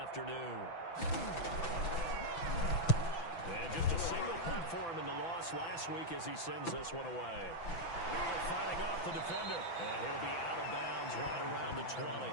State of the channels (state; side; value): late; right; 6.0 ms